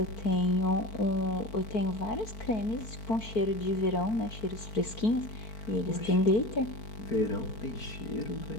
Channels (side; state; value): right; late; 4.5 ms